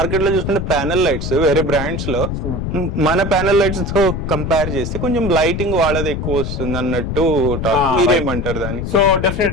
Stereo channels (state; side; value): noise; left; rumble, 3 dB below the sound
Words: లో చూసుకుంటే ప్యానల్ లైట్స్ వేరే బ్రాండ్స్ లో మన ప్యానల్ లైట్స్ తో కంపేర్ చేస్తే కొంచెం లైటింగ్ వాళ్ళది ఎక్కువ వస్తుంది అన్నట్టు మీరేమంటారు దాన్ని? సో